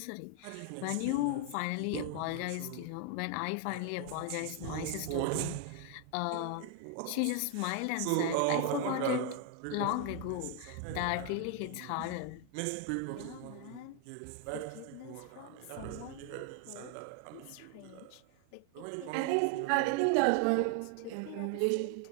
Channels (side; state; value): both; different; correlation 0.00